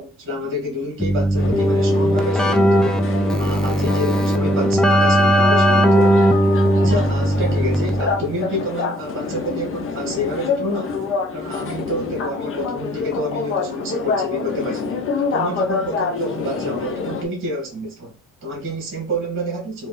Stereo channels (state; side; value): normal; both; correlation 0.63